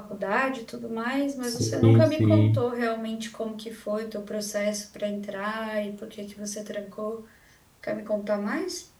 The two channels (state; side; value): identical; both; correlation 1.00